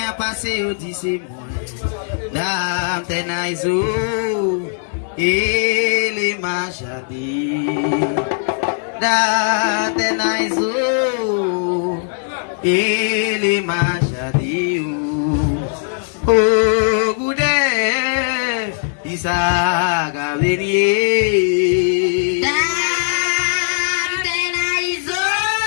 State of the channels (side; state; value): right; silent; digital silence